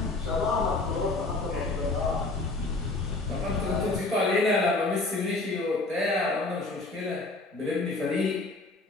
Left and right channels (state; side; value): quieter; right; 3.2 dB